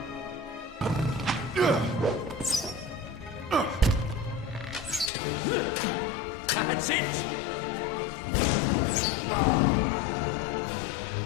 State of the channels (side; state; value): right; drops out; at 5.1 s